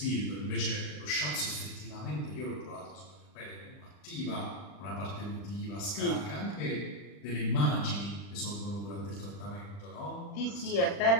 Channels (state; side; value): late; right; 40 ms